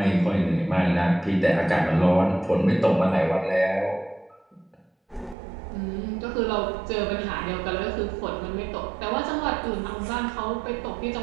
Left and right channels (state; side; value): drops out; left; at 5.4 s